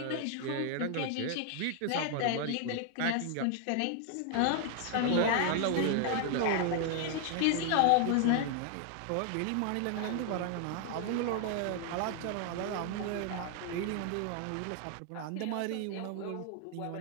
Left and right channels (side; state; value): both; different; correlation 0.00